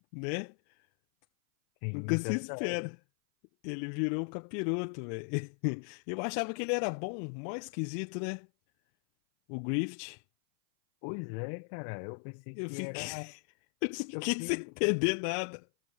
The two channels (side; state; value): right; silent; 54 dB below the other